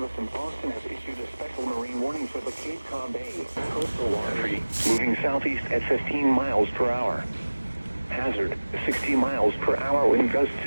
in Boston has issued a special marine warning for the Cape Cod Bay coastal water, moving southeast at 15 miles per hour. Hazard, 60 miles per hour wind gusts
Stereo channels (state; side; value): inverted; both; correlation -1.00